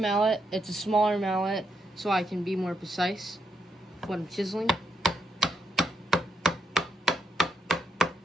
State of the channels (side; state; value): both; normal; correlation 0.79